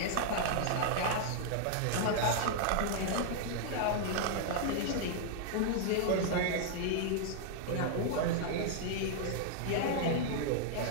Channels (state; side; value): different; both; correlation -0.01